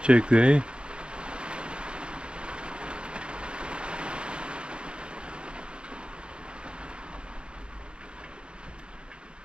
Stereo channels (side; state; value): left; late; 0.054 ms